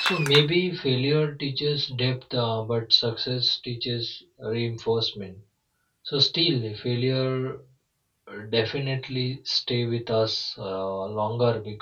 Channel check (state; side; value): identical; both; correlation 1.00